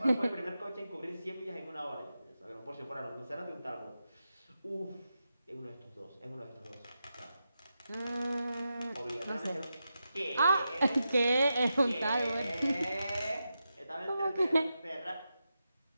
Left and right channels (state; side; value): inverted; both; correlation -0.89